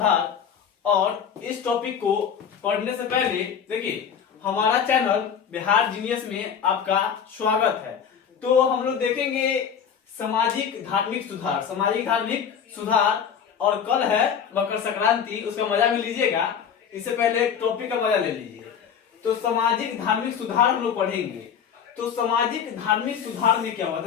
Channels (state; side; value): quieter; right; 7.7 dB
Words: और इस टॉपिक को पढ़ने से पहले देखिए, हमारा चैनल बिहार जीनियस में आपका स्वागत है। तो हम लोग देखेंगे सामाजिक धार्मिक सुधार। सामाजिक धार्मिक सुधार, और कल है मकर संक्रांति, उसका मजा भी लीजिएगा। इससे पहले एक टॉपिक का मजा ले लीजिए। तो सामाजिक धार्मिक सुधार हम लोग पढ़ेंगे। तो सामाजिक धार्मिक सुधार में क्या हुआ